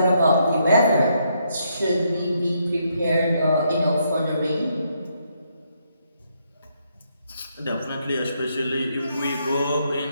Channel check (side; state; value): both; inverted; correlation -0.75